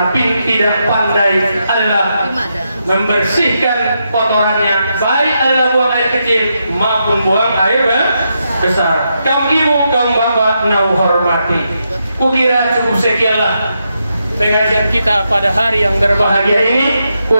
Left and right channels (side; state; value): both; inverted; correlation -0.83